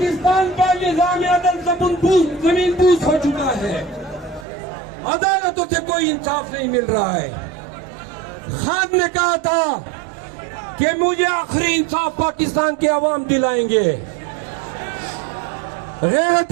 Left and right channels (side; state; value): left; drops out; at 4.5 s